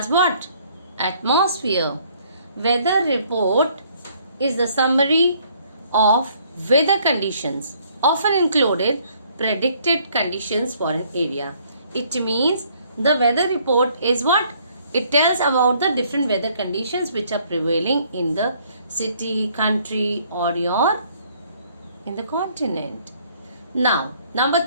what? Atmosphere. Weather report is the summary of weather conditions, often included predicted conditions for an area. It means the weather report is what? It tells about the different weather conditions which are prevailing in the city, country, or in the continent. Now,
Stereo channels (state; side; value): inverted; both; correlation -0.63